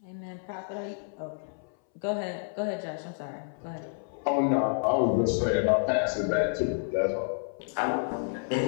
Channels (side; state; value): right; silent; 58 dB below the other